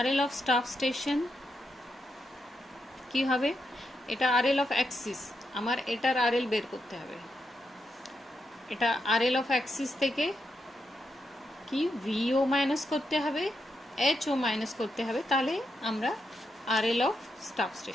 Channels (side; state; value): both; normal; correlation 0.84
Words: এল অফ স্টাফ স্টেশন কি হবে, এটা আর এল অফ অ্যাক্সিস, আমার এটার আর এল বের করতে হবে। এটা আর এল অফ অ্যাক্সিস থেকে কি ভিও মাইনাস করতে হবে, এইচও মাইনাস করতে হবে, তাহলে আমরা R L of staff